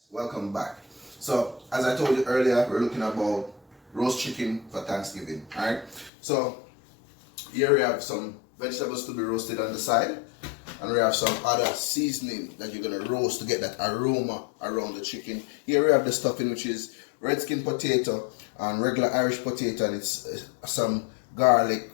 welcome back. So as I told you earlier, we're looking about roast chicken for Thanksgiving. Alright, so here we have some vegetables to be roasted on the side, and we have some other seasoning that you're gonna roast to get that aroma around the chicken. Here we have the stuffing, which is red skin potato and regular Irish potato, and it's some garlic,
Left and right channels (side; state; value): right; drops out; at 6.1 s